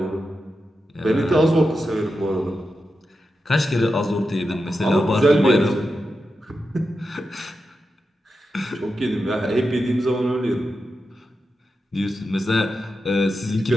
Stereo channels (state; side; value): normal; both; correlation 0.89